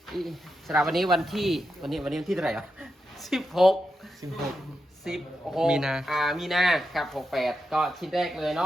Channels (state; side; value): normal; both; correlation 0.87